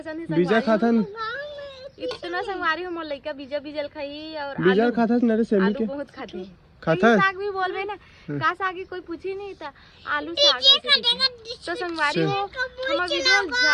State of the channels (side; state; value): both; identical; correlation 1.00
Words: है बीजा खाता न इतना संगवारी हो मोर लइका बीजा बीजल खाई और बीजा खाता न रे सेमी के बहुत खाते हैं। खाता साग भी बोलबे ना का साग की कोई पूछी नहीं था आलू साग तो संगवारी हो हमारा वीडियो